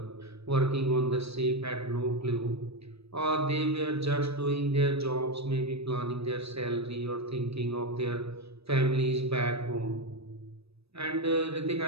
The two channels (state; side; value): late; left; 0.78 ms